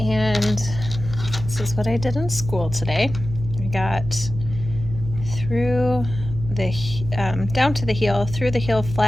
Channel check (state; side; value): noise; right; hum, 8 dB below the sound